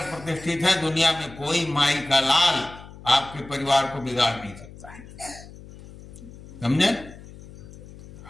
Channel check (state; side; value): noise; left; hum, 18 dB below the sound